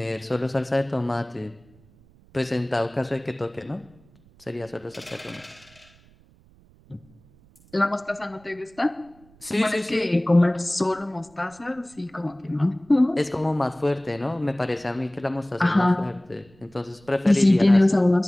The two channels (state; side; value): noise; right; rumble, 28 dB below the sound